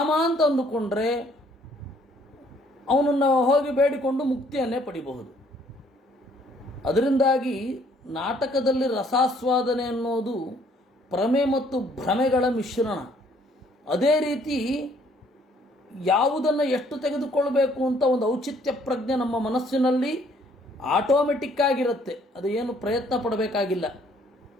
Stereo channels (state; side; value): normal; both; correlation 0.63